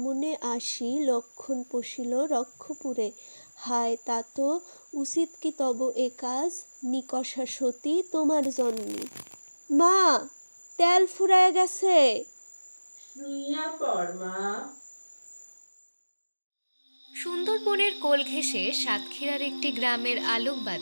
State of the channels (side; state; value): both; inverted; correlation -1.00